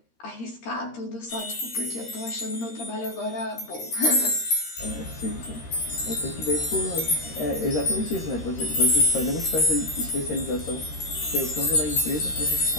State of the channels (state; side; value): late; right; 13 ms